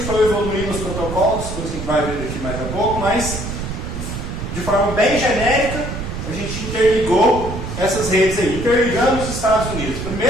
foi evoluindo os protocolos, coisa que a gente vai ver daqui mais a pouco, mas de forma bem genérica, a gente interligou essas redes aí, interligando os Estados Unidos.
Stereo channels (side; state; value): right; noise; rumble, 6 dB below the sound